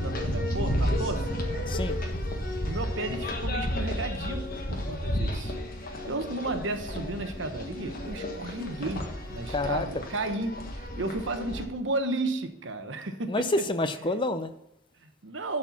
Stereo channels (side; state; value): both; normal; correlation 0.44